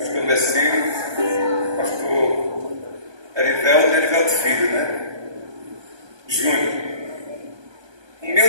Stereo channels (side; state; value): left; late; 1.2 ms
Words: Messino, pastor Erivelto Filho, né? Júnior,